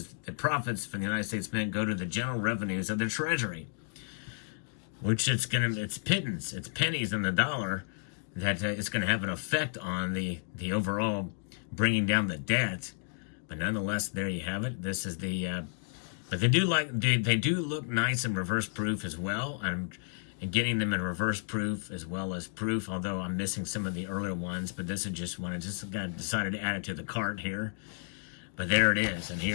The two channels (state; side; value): silent; right; digital silence